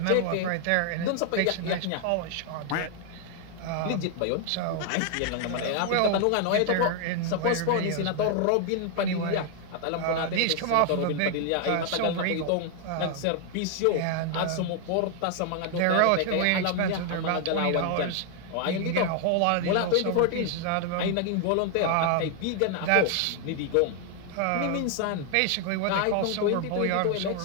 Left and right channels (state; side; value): different; both; correlation 0.00